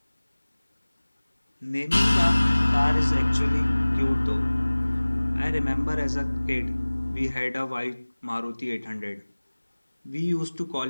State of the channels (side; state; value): both; inverted; correlation -1.00